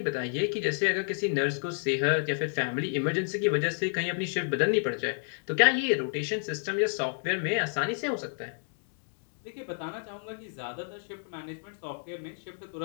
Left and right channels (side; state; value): right; silent; digital silence